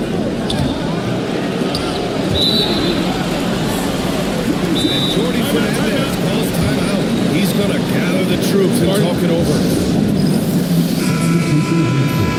And Jordi Fernandez calls timeout. He's going to gather the troops and talk it over.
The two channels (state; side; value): identical; both; correlation 1.00